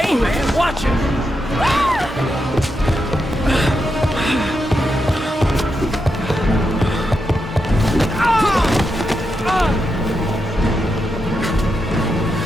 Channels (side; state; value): both; normal; correlation 0.85